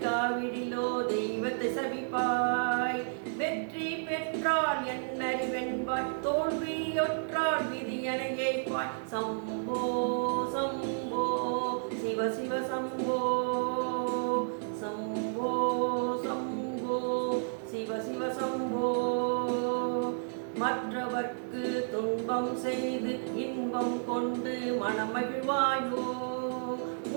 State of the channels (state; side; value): silent; left; digital silence